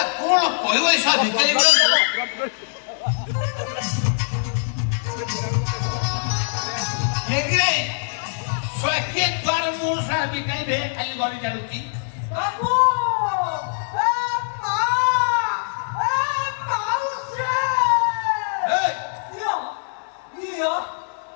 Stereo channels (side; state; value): right; silent; 64 dB below the other